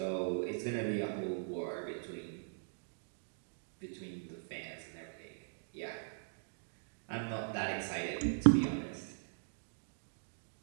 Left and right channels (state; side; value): silent; left; digital silence